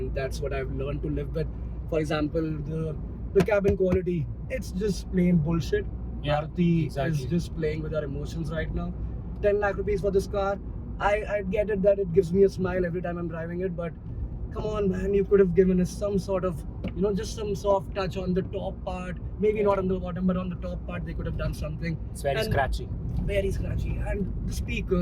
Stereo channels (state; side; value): identical; both; correlation 1.00